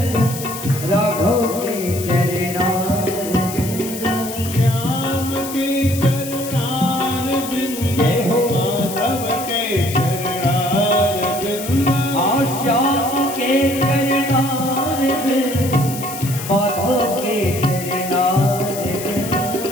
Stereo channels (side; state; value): left; noise; hiss, 10 dB below the sound